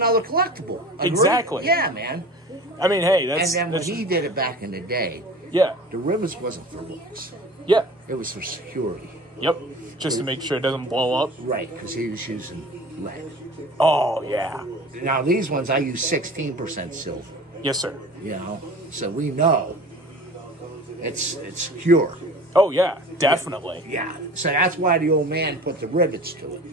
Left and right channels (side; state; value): both; normal; correlation 0.40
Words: collectible. Agree? Exactly. Yeah, man. I mean, hey, that's... And then when that's, he did it back in the day, yeah. the rivets wasn't for looks. Yeah. It was for security. Yep. Just to make sure it doesn't blow up. Right, because he was using lead. Oh, yeah. Now, these ones, I use 16% silver. Yes, sir. You know, so we know it's secure. Oh, yeah, definitely. Yeah, so that's why the old man put the rivets to